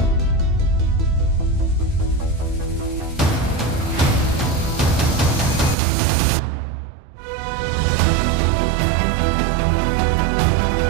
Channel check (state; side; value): drops out; left; at 5.8 s